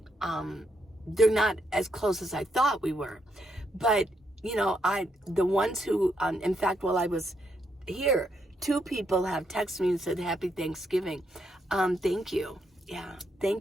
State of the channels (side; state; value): both; normal; correlation 0.78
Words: they're not as close as I thought we were. But, the ones who, in fact, while I was here, 2 people have texted me and said, Happy Thanksgiving. Thank you. Yeah,